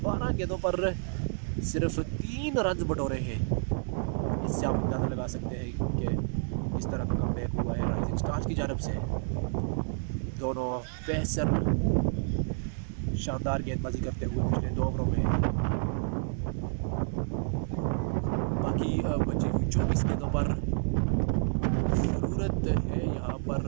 12 गेंदों पर सिर्फ 3 रन बटोरे हैं। इससे आप अंदाज़ा लगा सकते हैं कि इस तरह का कमबैक हुआ है राइजिंग स्टार्स की जानब से। दोनों पेसर शानदार गेंदबाजी करते हुए पिछले 2 ओवरों में। बाकी बची हुई 24 गेंदों पर ज़रूरत है यहाँ पर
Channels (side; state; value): left; silent; digital silence